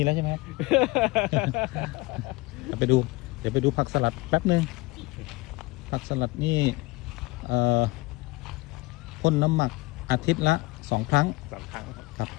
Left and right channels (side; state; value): right; quieter; 22.6 dB